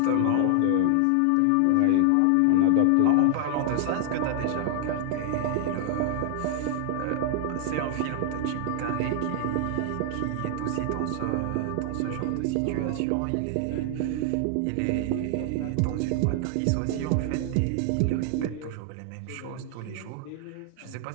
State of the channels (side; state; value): both; different; correlation 0.00